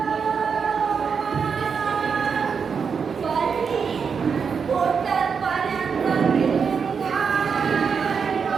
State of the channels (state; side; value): quieter; left; 6.1 dB